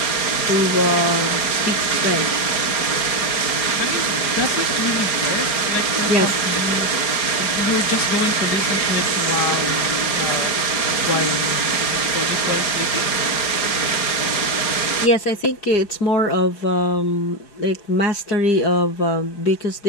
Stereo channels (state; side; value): late; right; 4.9 ms